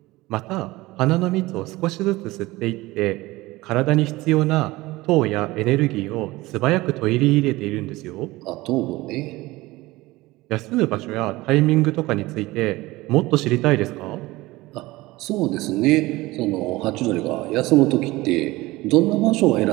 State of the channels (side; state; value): left; quieter; 19.7 dB